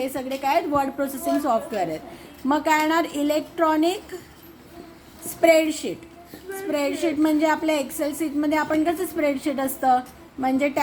सगळे काय आहेत, वर्ड प्रोसेसिंग सॉफ्टवेअर आहेत. मग काय येणार, इलेक्ट्रॉनिक स्प्रेडशीट. स्प्रेडशीट म्हणजे आपल्या एक्सेल सीटमध्ये आपण कसं स्प्रेडशीट असतं, म्हणजे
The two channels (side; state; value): both; identical; correlation 1.00